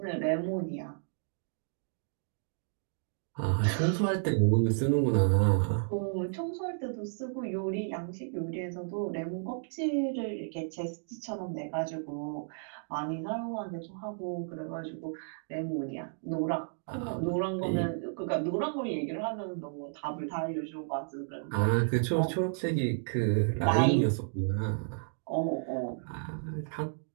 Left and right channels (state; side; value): silent; left; digital silence